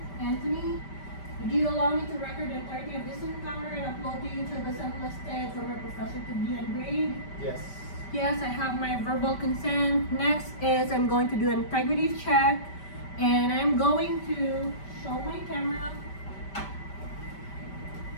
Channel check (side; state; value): right; late; 5.1 ms